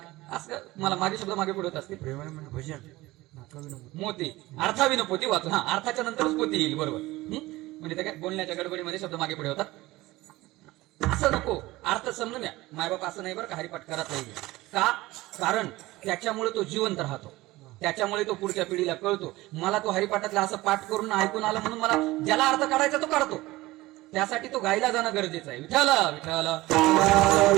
असं मला मागे शब्द मागे पुढे होत असते, प्रेमाविनं भजन नाकाविनं मोती अर्थाविनं पोती वाचून. हा, अर्थाच्या नंतरच पोती येईल, बरोबर. म्हणजे त्या काय बोलण्याच्या गडबडीमध्ये शब्द मागे पुढे होतात. असं नको, अर्थ समजून घ्या. मायबाप असं नाही बरं का हरिपाठ करत नाही का, कारण त्याच्यामुळे तो जिवंत राहतो, त्याच्यामुळे तो पुढच्या पिढीला कळतो. मला तो हरिपाठातला असं पाठ करून ऐकून आला म्हणून मला ज्याला अर्थ काढायचा तो काढतो, त्यासाठी तो गायला जाणं गरजेचं आहे. विठ्ठल विठ्ठल.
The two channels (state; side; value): quieter; left; 19.0 dB